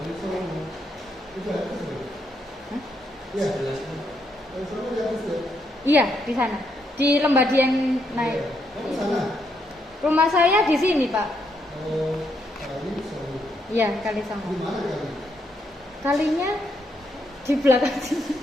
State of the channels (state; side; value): normal; both; correlation 0.77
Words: Iya, di sana. Di Lembadi yang naik. Rumah saya di sini, Pak. Iya, Kalisongo. Kalinya di belakang sini.